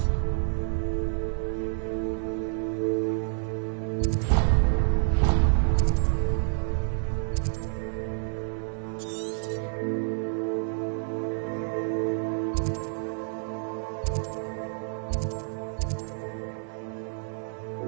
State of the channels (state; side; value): silent; left; digital silence